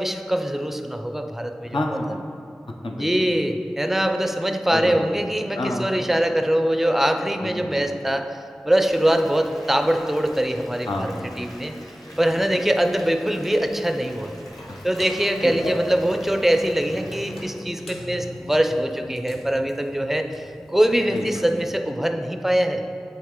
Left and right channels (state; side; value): normal; both; correlation 0.96